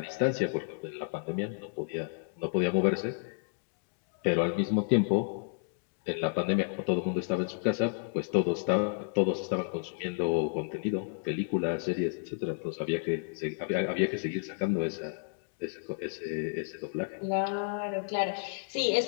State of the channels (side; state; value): right; silent; digital silence